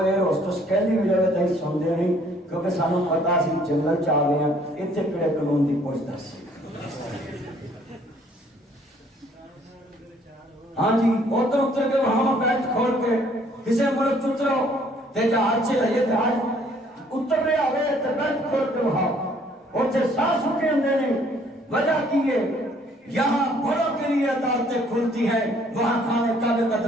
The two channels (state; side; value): normal; both; correlation 0.61